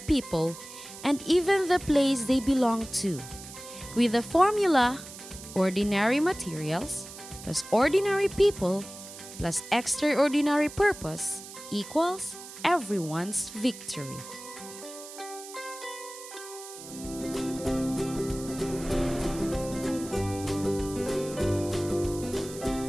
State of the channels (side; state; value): right; noise; hiss, 14 dB below the sound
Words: people, and even the place they belong to. With the formula, ordinary materials, plus ordinary people, plus extraordinary purpose equals everyone's victory.